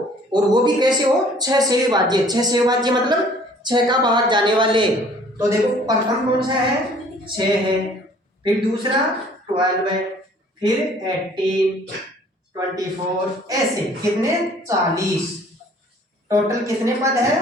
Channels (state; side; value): normal; both; correlation 0.54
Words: और वो भी कैसे हो, 6 से विभाज्य। 6 से विभाज्य मतलब 6 का भाग जाने वाले। तो देखो प्रथम कौन सा है, 6 है, फिर दूसरा 12 है, फिर 18, 24, ऐसे कितने 40। टोटल कितने पद